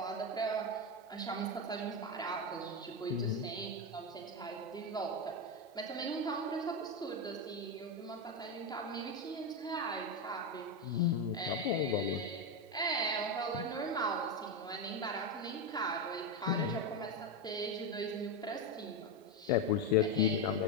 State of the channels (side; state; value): both; normal; correlation 0.11